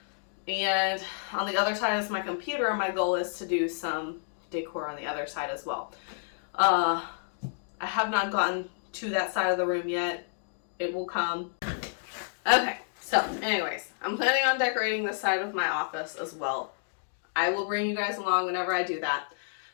and on the other side is my computer. My goal is to do some decor on the other side as well. I have not gotten to that side of the room yet. It will come. Okay, so anyways, I'm planning on decorating this side of my office as well. I will bring you guys along whenever I do that.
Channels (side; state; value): right; silent; digital silence